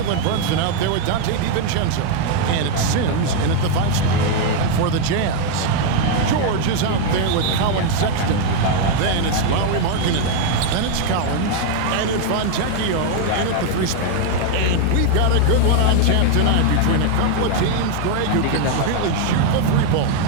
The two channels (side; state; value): both; different; correlation 0.00